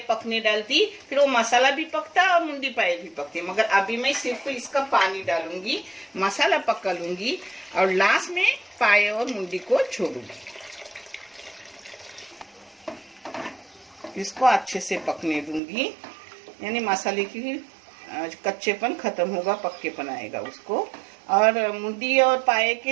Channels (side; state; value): left; drops out; at 15.6 s